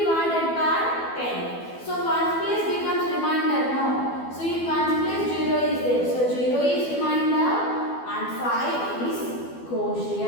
by 10. So ones place becomes remainder now. So in ones place 0 is there. So 0 is remainder and 5 is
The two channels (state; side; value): late; right; 12 ms